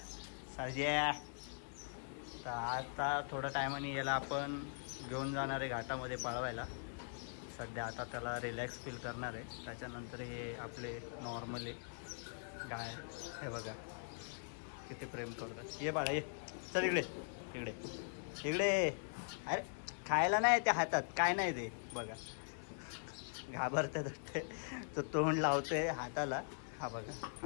तर आता थोड्या टायमाने याला आपण घेऊन जाणार आहे घाटामध्ये पळवायला. सध्या आता त्याला रिलॅक्स फील करणार आहे. त्याच्यानंतर हे आपले नॉर्मली गाय, हे बघा किती प्रेम करतात. ये बाळा ये, चल इकडे इकडे इकडे. अरे खायला नाही त्या हातात, काय नाही ते बघा, घाबरतात ते. तो तोंड लावतोय हाताला. हा बघा,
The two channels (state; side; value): silent; right; digital silence